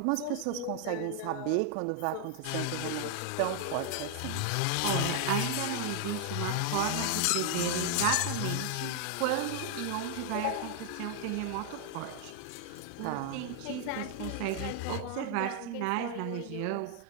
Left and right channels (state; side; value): different; both; correlation 0.00